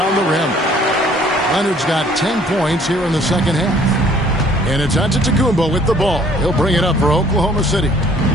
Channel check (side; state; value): both; normal; correlation 0.58